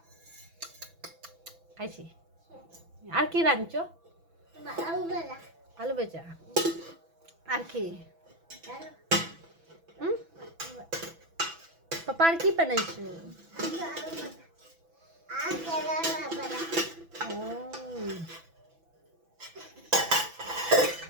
খাইছি। আর কি রাঁধছো? আলু বেচা। আর কি? পাপা আর কি বানাইছো?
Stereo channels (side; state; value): left; late; 6.0 ms